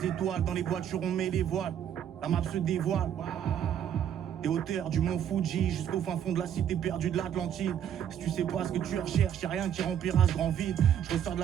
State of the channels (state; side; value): quieter; left; 9.6 dB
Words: étoiles, dans les voitures on met les voiles. La map se dévoile. Des hauteurs du mont Fuji jusqu'au fin fond de la cité perdue de l'Atlantide. Si tu sais pas ce que tu recherches, y'a rien qui remplira ce grand vide. Je ressors de